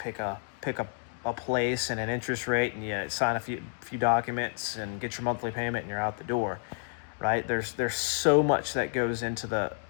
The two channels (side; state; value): right; silent; digital silence